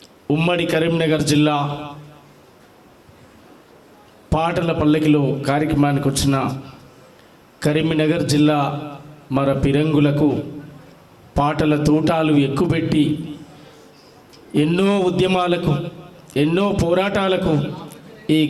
ఉమ్మడి కరీంనగర్ జిల్లా పాటల పల్లకిలో కార్యక్రమానికి వచ్చిన కరీంనగర్ జిల్లా మర పిరంగులకు పాటల తూటాలు ఎక్కుపెట్టి ఎన్నో ఉద్యమాలకు, ఎన్నో పోరాటాలకు ఈ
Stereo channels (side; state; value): both; identical; correlation 1.00